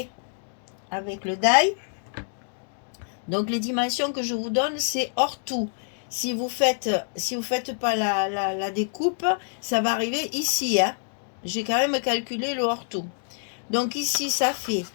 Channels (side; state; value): right; silent; digital silence